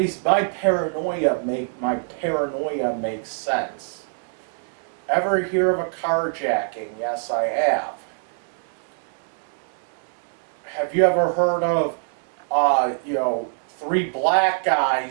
my paranoia makes sense. Ever hear of a carjacking? Yes, I have. Have you ever heard of, 3 black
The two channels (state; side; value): silent; left; 63 dB below the other